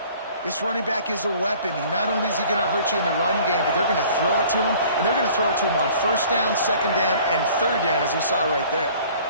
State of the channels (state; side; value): inverted; both; correlation -0.51